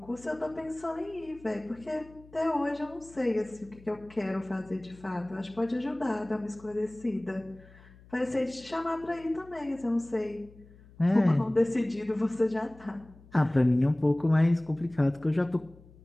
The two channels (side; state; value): left; noise; hum, 23 dB below the sound